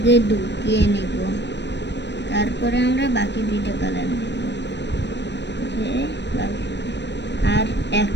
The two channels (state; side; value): late; right; 0.51 ms